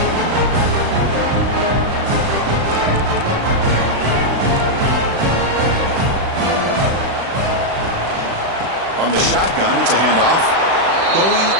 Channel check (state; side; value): late; left; 36 ms